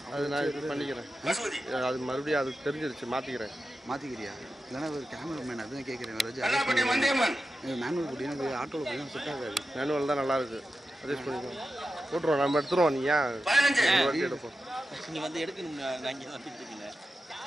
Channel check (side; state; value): both; normal; correlation 0.91